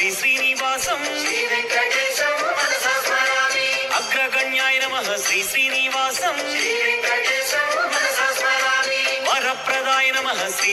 శ్రీనివాసం శ్రీ వెంకటేశం మనసా స్మరామి అగ్రగణ్యాయ నమః శ్రీ శ్రీనివాసం శ్రీ వెంకటేశం మనసా స్మరామి వరప్రదాయ నమః శ్రీ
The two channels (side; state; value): both; identical; correlation 1.00